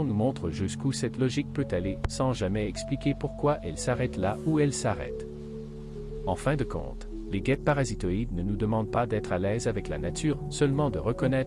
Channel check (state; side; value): identical; both; correlation 1.00